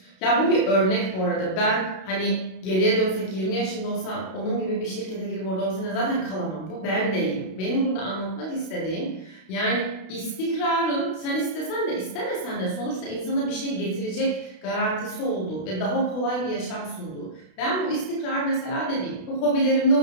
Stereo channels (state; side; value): late; right; 32 ms